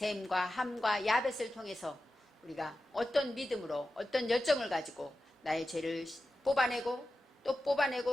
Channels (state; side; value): normal; both; correlation 0.93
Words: 함과 야벳을 통해서 우리가 어떤 믿음으로 어떤 열정을 가지고 나의 죄를 뽑아내고 또